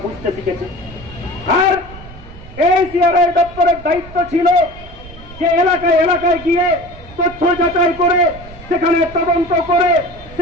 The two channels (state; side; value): noise; right; rumble, 18 dB below the sound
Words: বুঝতে শিখেছে। আর এই সিআরআই দপ্তরের দায়িত্ব ছিল যে এলাকায় গিয়ে তথ্য যাচাই করে, সেখানে তদন্ত করে,